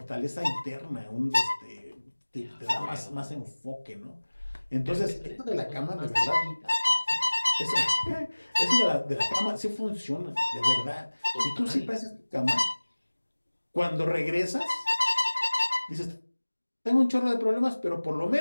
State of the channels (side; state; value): both; inverted; correlation -1.00